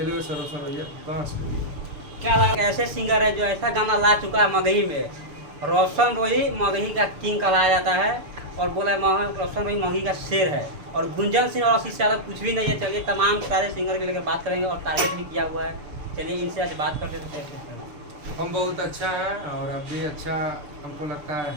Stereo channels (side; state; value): left; late; 6.8 ms